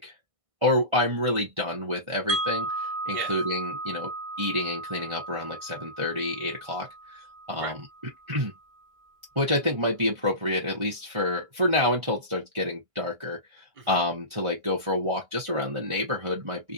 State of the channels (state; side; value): late; left; 1.5 ms